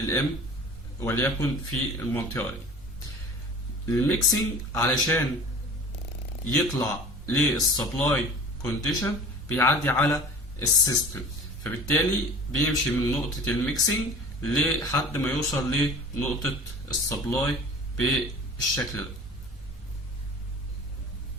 وليكن في المنطقة دي. الميكسينج علشان يطلع للسبلاي كونديشن بيعدي على السيستم، فبالتالي بيمشي من نقطة الميكسينج لحد ما يوصل لنقطة السبلاي بالشكل ده.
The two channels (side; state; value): both; normal; correlation 0.41